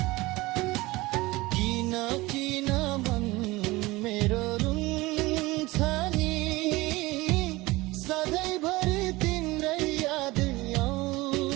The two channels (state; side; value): quieter; left; 20.7 dB